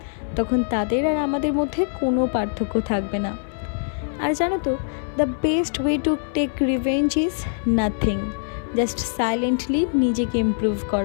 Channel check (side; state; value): right; silent; 58 dB below the other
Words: তখন তাদের আর আমাদের মধ্যে কোনো পার্থক্য থাকবে না। আর জানো তো, the best way to take revenge is nothing, just silently নিজেকে ইমপ্রুভ